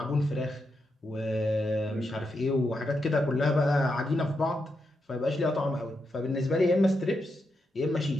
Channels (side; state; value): both; normal; correlation 0.84